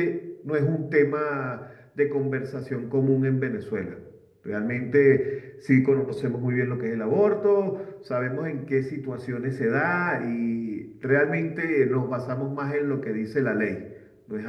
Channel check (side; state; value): both; identical; correlation 1.00